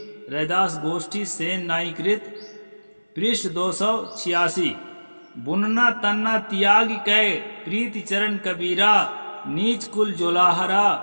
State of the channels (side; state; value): both; inverted; correlation -1.00